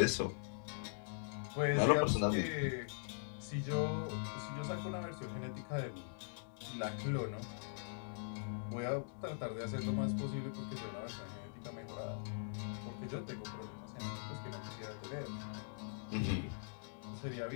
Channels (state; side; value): silent; right; digital silence